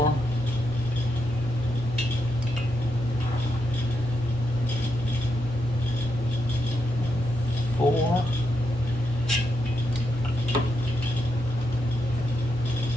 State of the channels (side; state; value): both; normal; correlation 0.83